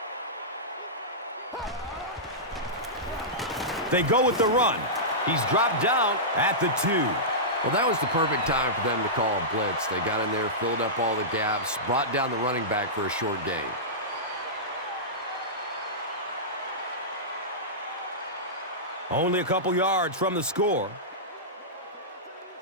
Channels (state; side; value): normal; both; correlation -0.15